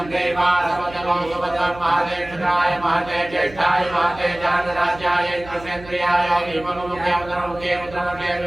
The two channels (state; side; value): noise; right; hum, 18 dB below the sound